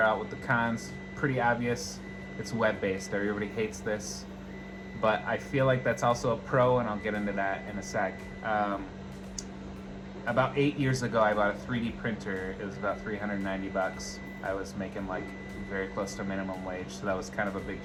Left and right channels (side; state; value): both; identical; correlation 1.00